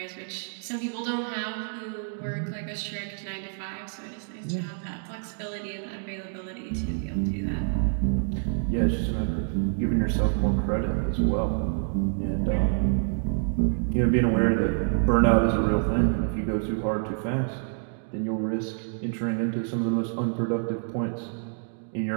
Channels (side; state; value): left; silent; digital silence